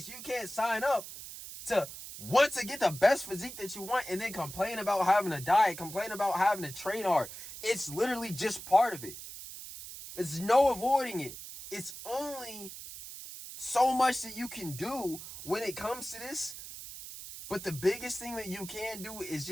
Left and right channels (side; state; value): right; noise; hiss, 12 dB below the sound